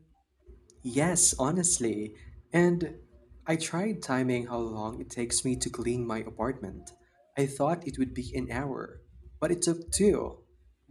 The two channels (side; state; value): both; identical; correlation 1.00